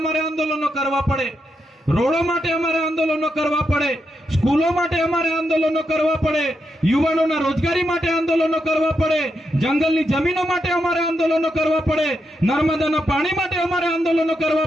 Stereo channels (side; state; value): both; normal; correlation 0.83